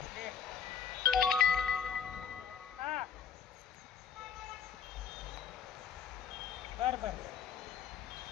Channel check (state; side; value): quieter; right; 7.4 dB